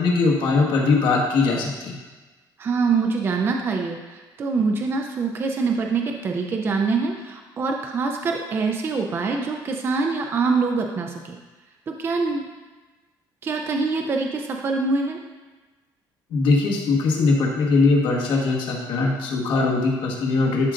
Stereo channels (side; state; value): both; normal; correlation 0.66